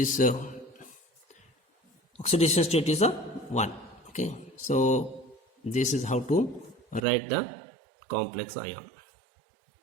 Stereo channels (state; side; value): drops out; left; at 7.1 s